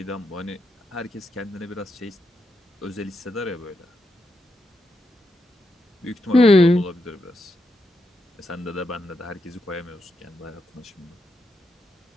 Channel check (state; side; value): normal; both; correlation 0.83